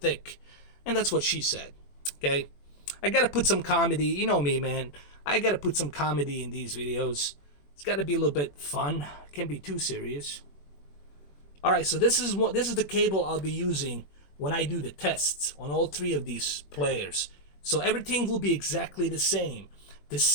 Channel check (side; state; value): right; late; 21 ms